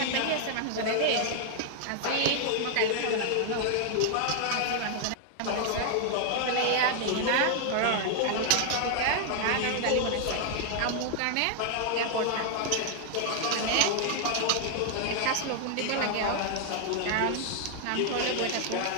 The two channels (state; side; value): different; both; correlation 0.00